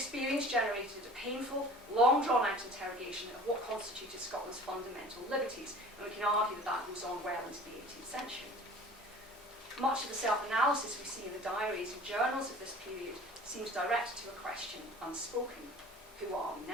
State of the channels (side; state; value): both; normal; correlation 0.45